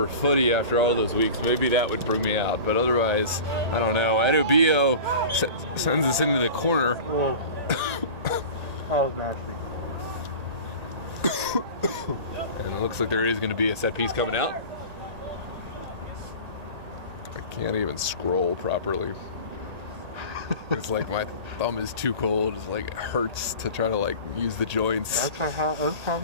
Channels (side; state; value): left; late; 1.8 ms